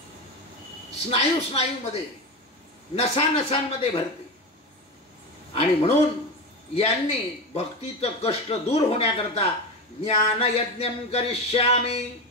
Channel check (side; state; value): both; normal; correlation 0.20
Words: स्नायूमध्ये, नसानसांमध्ये भरते. आणि म्हणून यांनी भक्तीचं कष्ट दूर होण्याकरता ज्ञानयज्ञं करिष्यामि,